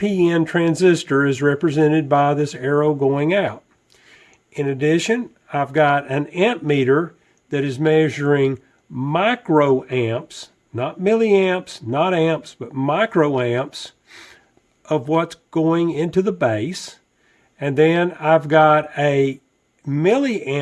transistor is represented by this arrow going out. In addition, I've got an amp meter that is measuring microamps, not milliamps, not amps, but microamps of what's going into the base. And then I've got a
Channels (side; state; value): both; identical; correlation 1.00